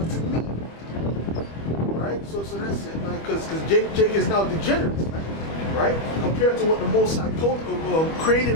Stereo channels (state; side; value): late; right; 25 ms